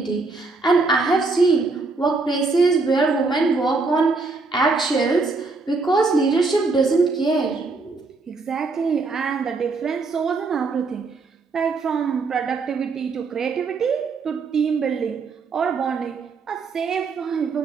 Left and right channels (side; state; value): left; quieter; 3.9 dB